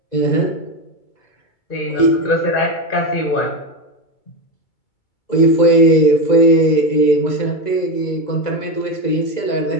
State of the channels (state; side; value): late; right; 2.0 ms